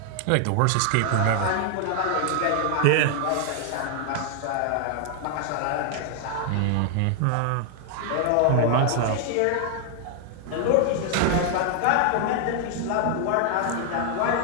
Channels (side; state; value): both; different; correlation 0.00